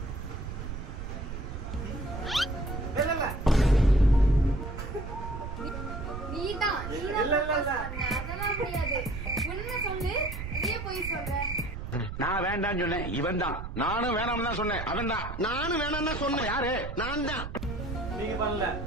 நீதான் அதெல்லாம் முடியாது. உண்மை சொல்லு, அதே போய் சொல்ற. நான் வேண்டான்னு சொன்னேன், இவன் தான். நானும் வேணாம்னு தான் சொன்னேன், அவன் தான். நானும் வேணாம்னு தான் சொன்னேன். யாரு? நான் தான். நீங்க பண்ணல.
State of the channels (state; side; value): noise; right; rumble, 7 dB below the sound